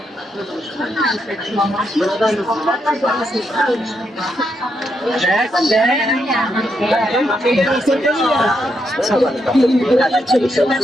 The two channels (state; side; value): normal; both; correlation 0.80